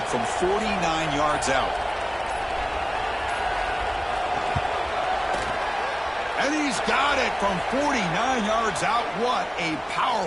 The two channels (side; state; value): both; identical; correlation 1.00